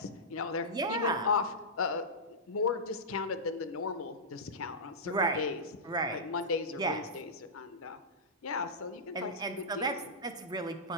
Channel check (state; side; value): normal; both; correlation -0.14